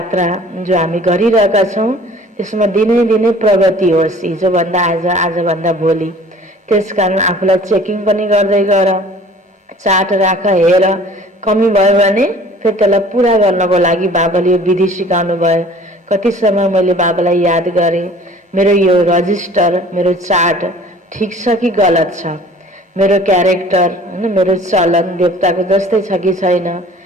जो हामी गरिरहेका छौं त्यसमा दिनै दिनै प्रगति होस्। हिजोभन्दा आज, आजभन्दा भोलि। त्यसकारण आफूलाई चेकिङ पनि गर्दै गर। चार्ट राख, हेर। कमी भयो भने फेरि त्यसलाई पुरा गर्नको लागि बाबाले यो विधि सिकाउनु भयो। कति समय मैले बाबालाई याद गरेँ, मेरो यो रजिस्टर, मेरो चार्ट ठिक छ कि गलत छ? मेरो क्यारेक्टर हैन, मेरो चलन देवताको जस्तै छ कि छैन,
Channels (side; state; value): both; normal; correlation 0.49